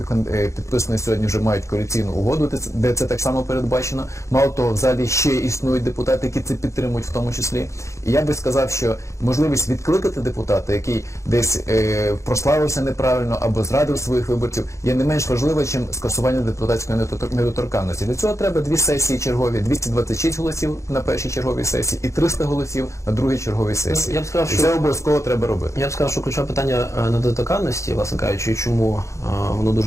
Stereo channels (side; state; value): right; late; 0.14 ms